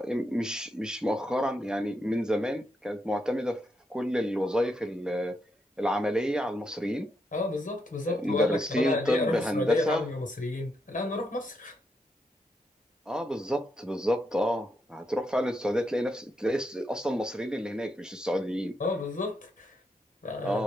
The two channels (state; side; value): normal; both; correlation 0.81